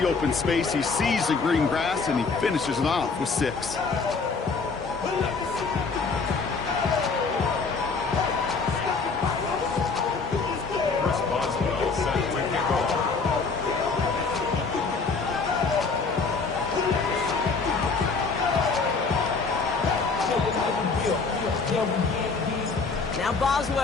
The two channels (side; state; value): right; quieter; 4.5 dB